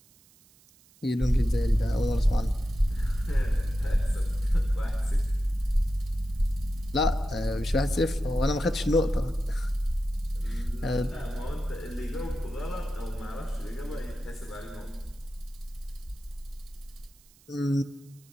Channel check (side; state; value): right; noise; hiss, 28 dB below the sound